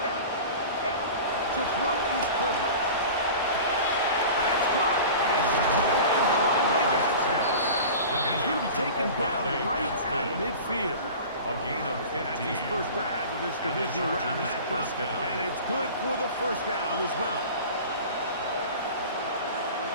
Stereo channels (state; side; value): inverted; both; correlation -0.37